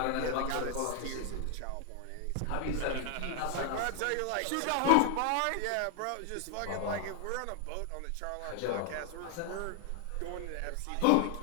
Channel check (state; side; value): different; both; correlation 0.00